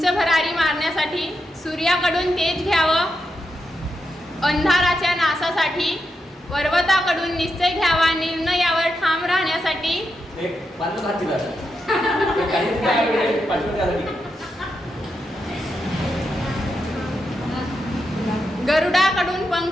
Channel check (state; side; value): normal; both; correlation 0.85